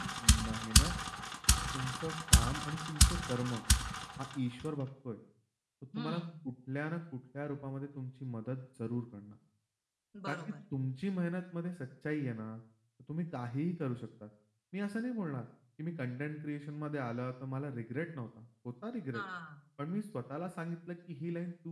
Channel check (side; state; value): both; identical; correlation 1.00